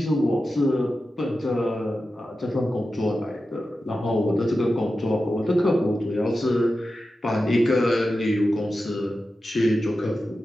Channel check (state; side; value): normal; both; correlation 0.92